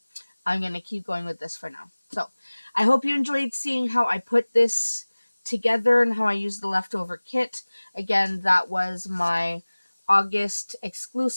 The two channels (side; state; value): both; inverted; correlation -1.00